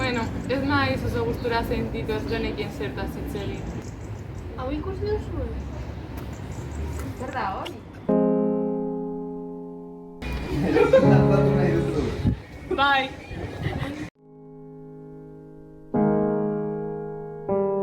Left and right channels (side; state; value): both; identical; correlation 1.00